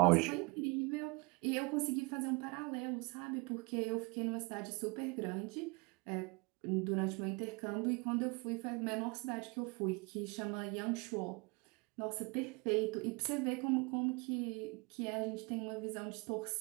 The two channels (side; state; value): left; quieter; 28.5 dB